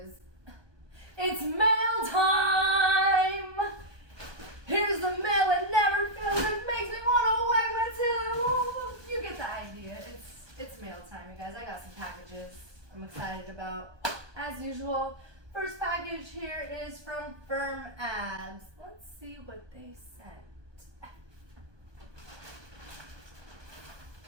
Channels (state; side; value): late; left; 1.2 ms